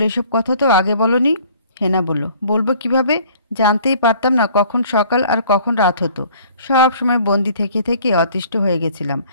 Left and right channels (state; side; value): inverted; both; correlation -0.54